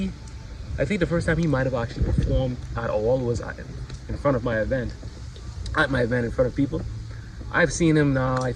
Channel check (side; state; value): both; identical; correlation 1.00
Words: think the first time he might have actually performed at all was in front of at my event in front of people. I've seen him now. I